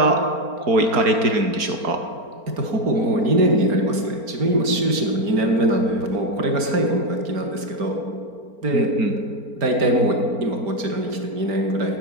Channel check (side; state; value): left; late; 4.4 ms